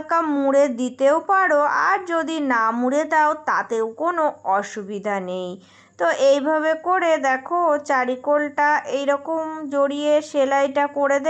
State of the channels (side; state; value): both; identical; correlation 1.00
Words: মুড়ে দিতেও পারো, আর যদি না মুড়ে দাও তাতেও কোনো অসুবিধা নেই। তো এইভাবে করে দেখো চারিকোলটা এইরকম জড়িয়ে সেলাইটা করে